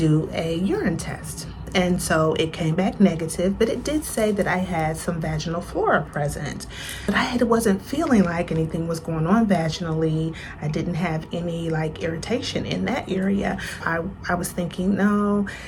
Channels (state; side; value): identical; both; correlation 1.00